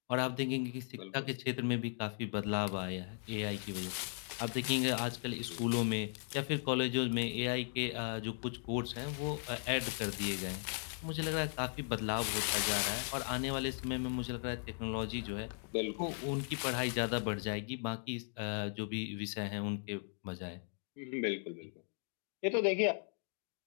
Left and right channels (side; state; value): right; silent; 53 dB below the other